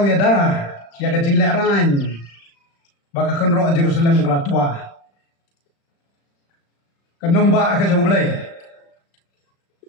ya dah, ya kecing leran, baka kenrok Jerusalem kelatua, kenong ba ke jomblay,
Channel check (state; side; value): late; right; 35 ms